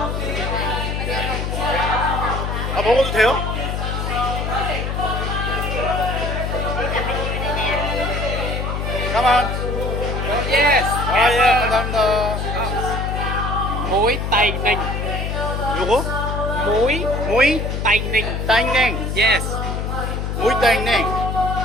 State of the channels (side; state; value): left; noise; hum, 2 dB below the sound